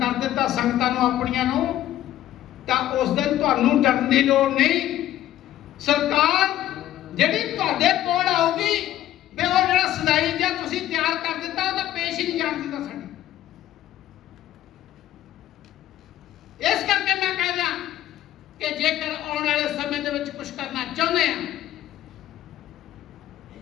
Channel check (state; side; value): quieter; right; 13.2 dB